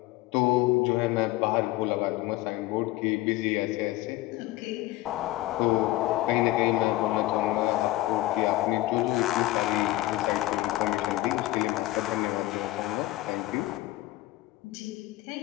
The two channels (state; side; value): quieter; right; 17.2 dB